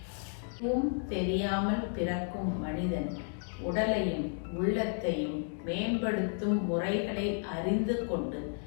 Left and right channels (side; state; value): right; silent; 56 dB below the other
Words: தெரியாமல் பிறக்கும் மனிதன் உடலையும் உள்ளத்தையும் மேம்படுத்தும் முறைகளை அறிந்து கொண்டு